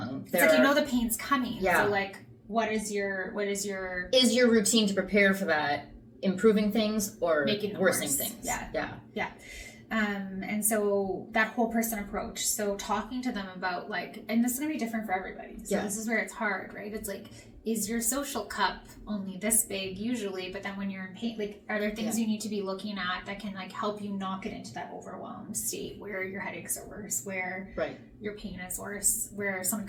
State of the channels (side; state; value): both; identical; correlation 1.00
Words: it's like, you know, the pain's coming. Yeah. So like, what is your is your routine to prepare for that improving things or making worsening things? Yeah. And so that whole person approach, so talking to them about like, and this is going to be different for everybody. So this is where it's hard, right? It's like, is your social cup only this big usually, but then when you're in pain, like, are there things you need to be looking at that can like help you not get into that overwhelmed state where your headaches are worse, where your pain is worse, where someone